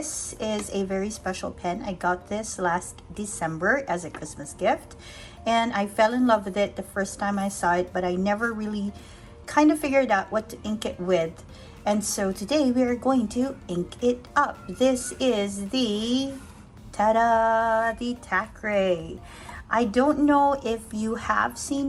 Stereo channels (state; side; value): identical; both; correlation 1.00